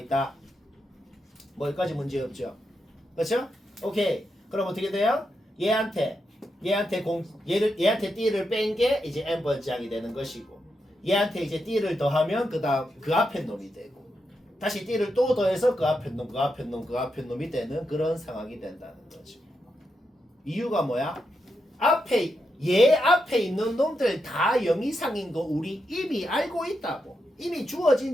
뭐 여기까지 문제 없죠? 그렇죠? 오케이. 그럼 어떻게 돼요? 얘한테 띠를 뺀 게 이제 n번장이 되는 것이고 얘한테 이제 띠를 더하면 그다음 그 앞에 놈이 되고 다시 띠를 또 더해서 그 앞에 놈이 되는 그런 상황이 된다는 거죠. 이유가 뭐야? 얘 앞에 있는 놈들 다 0 이상인 거 우리 이미 알고 있다고. 이미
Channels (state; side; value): normal; both; correlation 0.84